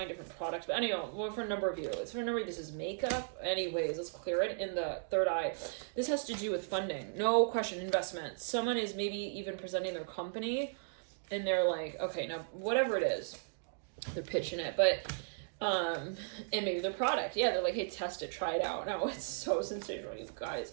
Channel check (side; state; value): left; silent; digital silence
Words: different products. But anyway, well, for a number of you, it's for a number of you, this is makeup. Anyways, let's clear it in the third eye. This has to do with funding. No question, investment. Someone is maybe even presenting their company and they're like, okay, now whatever it is, they're pitching it. But and maybe their product, yeah, they're like, hey, test it, try it out. No, it's so sensational, you